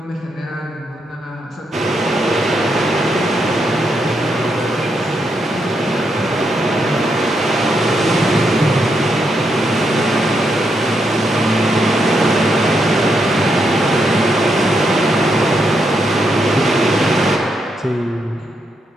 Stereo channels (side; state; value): both; normal; correlation 0.80